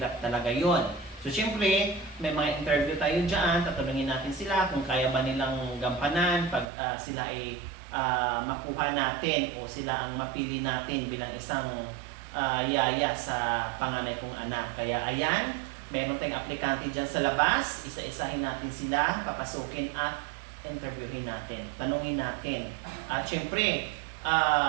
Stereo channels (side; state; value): left; drops out; at 6.7 s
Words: talaga yon. So syempre, may mga interview tayo dyan, tatanungin natin sila kung kaya ba nilang gampanan pag sila ay makuha natin o sila ang mapili natin bilang isang yaya sa panganay kong anak. Kaya ayan, meron tayong aplikante dyan sa labas, isa-isahin natin sila, papasukin at interviewin natin, tanungin natin. At syempre,